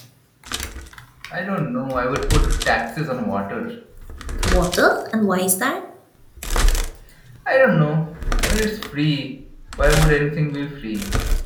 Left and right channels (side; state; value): both; identical; correlation 1.00